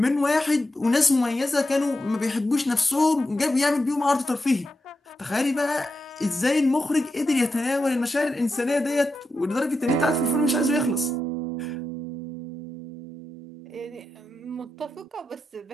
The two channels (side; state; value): both; normal; correlation 0.88